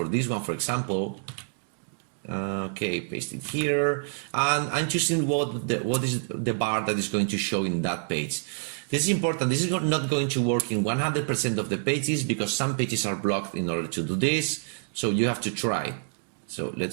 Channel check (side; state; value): left; silent; 60 dB below the other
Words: this one, for example. Okay, paste it here, and I'm choosing what is the bar that is going to show in that page. This is important. This is not going to work in 100% of the pages because some pages are blocked in order to do this. So you have to try. So